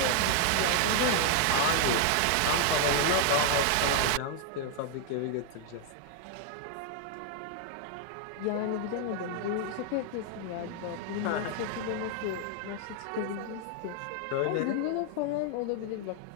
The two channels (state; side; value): different; both; correlation 0.00